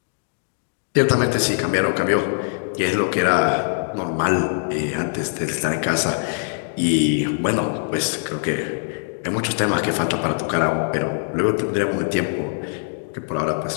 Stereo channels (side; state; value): right; silent; digital silence